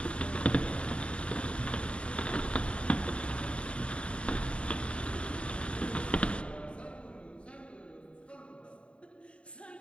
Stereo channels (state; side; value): late; right; 0.058 ms